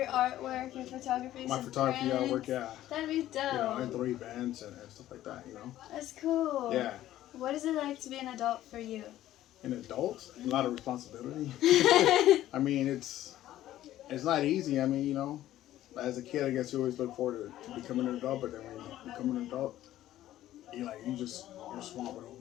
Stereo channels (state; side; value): quieter; right; 13.6 dB